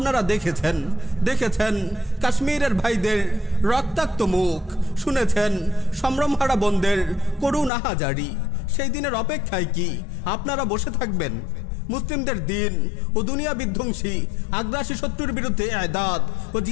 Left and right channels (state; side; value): drops out; right; at 7.7 s